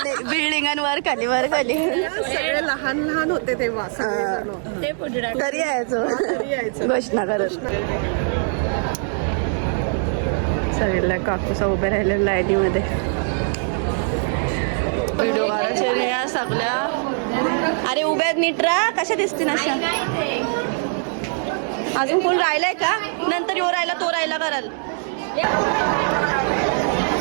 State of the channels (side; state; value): left; silent; 55 dB below the other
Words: बिल्डिंगांवर खाली वर खाली सगळे लहान लहान होते तेव्हा ते पुढे तरी यायचो घोषणा करत. सगळ्या काकूसा उभे राहिले लाईनीमध्ये व्हिडिओ काढायचे या सगळ्या. अरे उभ्या नीट राहा. कशा दिसतील अशा? अजून कोण राहिलाय का? नंतर यो राहिला तो राहिला कराल.